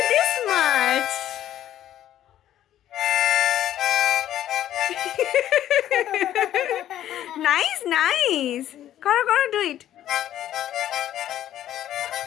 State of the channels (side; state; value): right; quieter; 12.0 dB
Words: this much. Nice. Karo, do it.